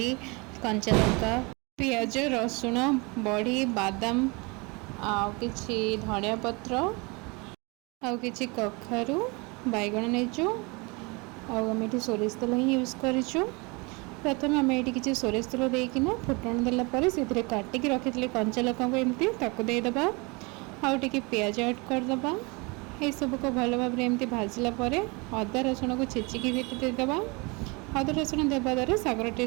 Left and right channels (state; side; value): quieter; left; 28.2 dB